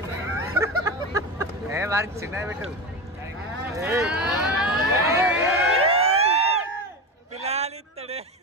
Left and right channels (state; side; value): normal; both; correlation 0.22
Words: వారికి చిన్న పెట్టు పిల్లాలిస్తాడే.